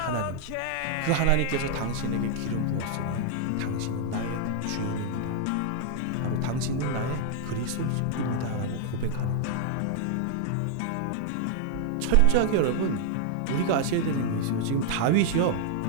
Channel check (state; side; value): different; both; correlation 0.00